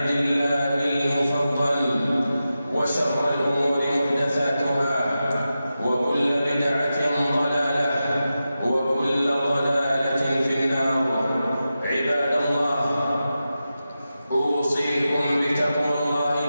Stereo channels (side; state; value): both; inverted; correlation -0.92